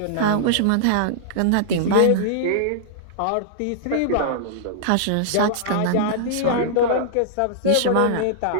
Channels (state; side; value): different; both; correlation -0.01